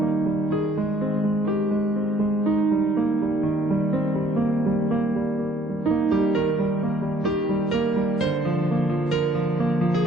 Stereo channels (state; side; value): normal; both; correlation 0.61